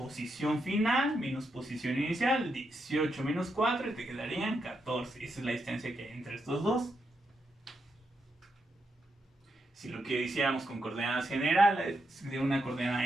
final menos posición inicial, 18 menos 4 y te quedarían 14. Esa es la distancia que hay entre estos dos. Si lo que hiciéramos con coordenadas generales, de una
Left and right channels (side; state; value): both; normal; correlation 0.83